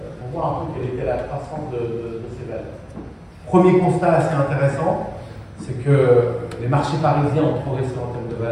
pour voir un peu quelle était la croissance de ces valeurs. Premier constat assez intéressant, c'est que les marchés parisiens ont progressé en termes de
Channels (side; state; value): both; identical; correlation 1.00